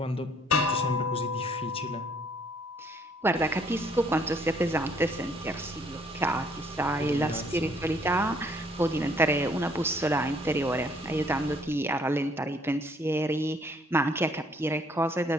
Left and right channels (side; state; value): both; normal; correlation 0.63